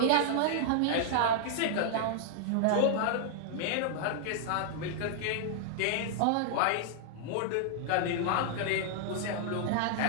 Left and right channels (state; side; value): different; both; correlation -0.01